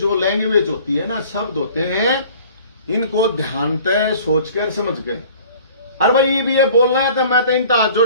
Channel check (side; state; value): both; inverted; correlation -0.50